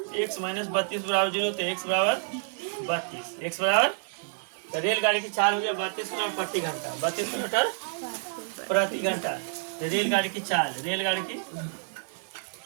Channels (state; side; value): silent; left; 58 dB below the other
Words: एक्स माइनस 32 बराबर 0, तो एक्स बराबर 32, एक्स बराबर तो रेलगाड़ी की चाल हो गया 32 किलोमीटर प्रति घंटा, 32 किलोमीटर प्रति घंटा। तो रेलगाड़ी की चाल, रेलगाड़ी की